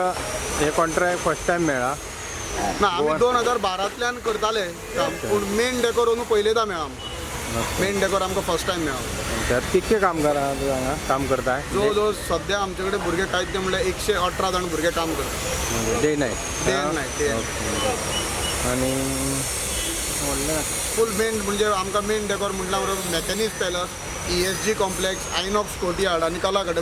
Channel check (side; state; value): both; identical; correlation 1.00